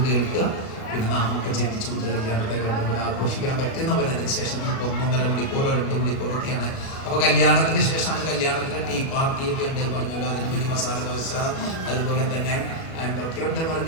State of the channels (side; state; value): right; late; 37 ms